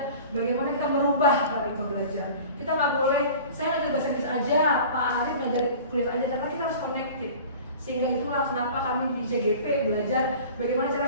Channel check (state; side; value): inverted; both; correlation -0.41